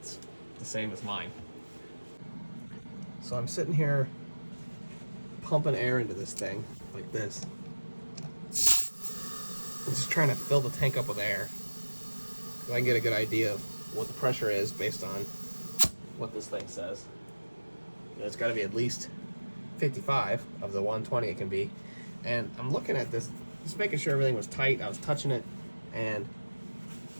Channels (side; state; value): both; inverted; correlation -1.00